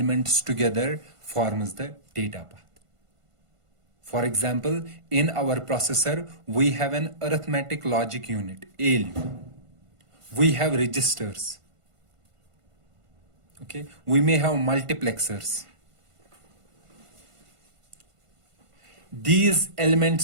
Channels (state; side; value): late; left; 1.5 ms